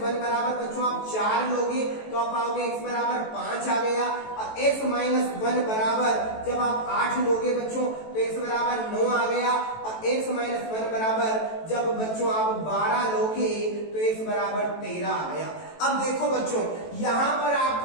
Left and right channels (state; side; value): late; right; 18 ms